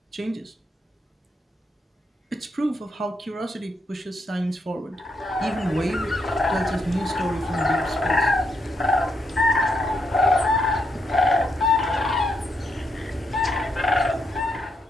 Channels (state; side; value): normal; both; correlation 0.79